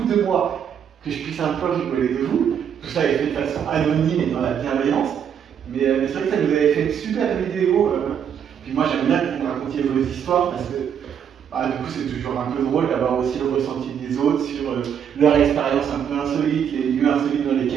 de moi, que je puisse un peu rigoler de vous. Tout ça est fait de façon anonyme et dans la bienveillance. Mais c'est vrai que ça nous avait fait une super vidéo. Puis moi, j'aime bien que vous me racontiez vos histoires parce que du coup, c'est toujours un peu drôle d'avoir aussi le ressenti des autres sur leur expérience un peu insolite, les lieux insolites dans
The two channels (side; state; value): left; quieter; 8.3 dB